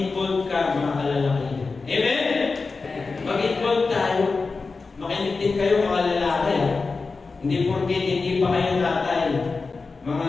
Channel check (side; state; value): right; quieter; 4.2 dB